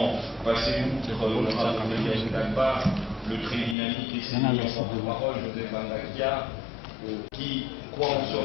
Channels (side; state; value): right; drops out; at 3.8 s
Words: passer outre l'honorable Amélie Ndamba, le très dynamique et sémillant porte-parole Joseph Andakia, qui croient en ce